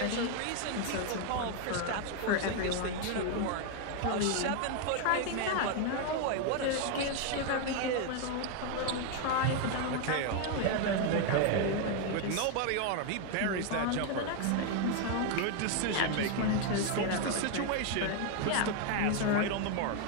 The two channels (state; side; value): different; both; correlation 0.01